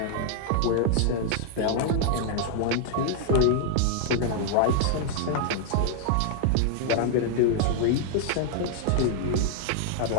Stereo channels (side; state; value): both; different; correlation -0.01